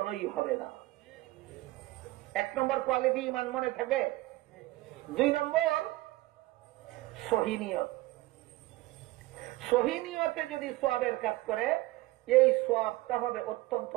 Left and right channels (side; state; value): left; quieter; 19.2 dB